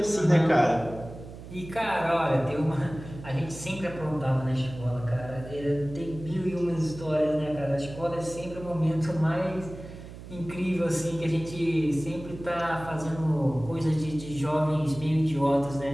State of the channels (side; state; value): right; noise; hum, 14 dB below the sound